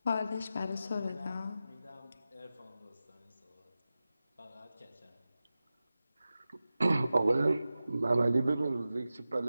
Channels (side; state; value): both; inverted; correlation -0.94